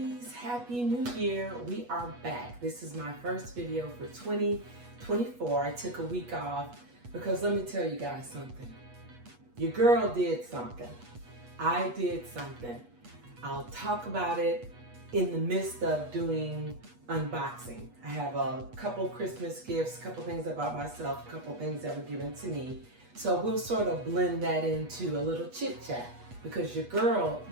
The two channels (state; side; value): late; left; 8.3 ms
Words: happy new year. We are back. This is my first video for 2024. I took a week off because let me tell you guys something. Your girl did something. I did something. I'll talk about it in the midst of doing unboxing. I have a couple Christmas gifts, a couple things I bought myself, a couple things that were given to me. So we'll sort of blend that into a little chit chat because your girl